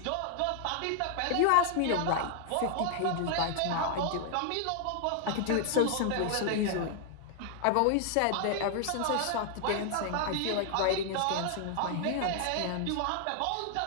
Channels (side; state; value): both; different; correlation 0.00